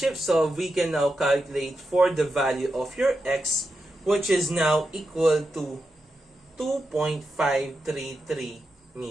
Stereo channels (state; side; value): normal; both; correlation 0.88